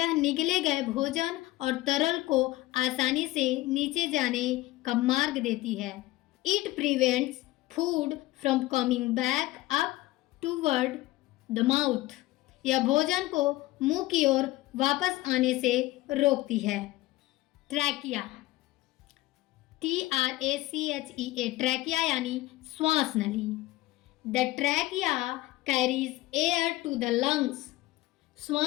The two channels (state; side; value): quieter; right; 18.1 dB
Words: निगले गए भोजन और तरल को आसानी से नीचे जाने का मार्ग देती है। It prevents food from coming back up toward the mouth, यह भोजन को मुंह की ओर वापस आने से रोकती है। ट्रैकिया, TRACHEA, ट्रैकिया यानी श्वास नली। The trachea carries air to the lungs,